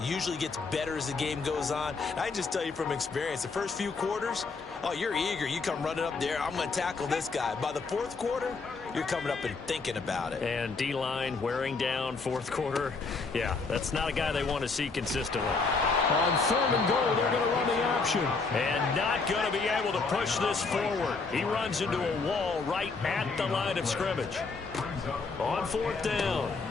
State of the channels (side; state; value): right; quieter; 4.3 dB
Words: usually gets better as the game goes on. And I just tell you from experience, the first few quarters, oh, you're eager. You come running up there, I'm going to tackle this guy. By the 4th quarter, you're coming up and thinking about it. And D-line wearing down 4th quarter. Yeah, that's not a guy they want to see consistently. On 3rd and goal, they're going to run the option. And not going to be able to push this forward. He runs into a wall right at the line of scrimmage. On 4th down,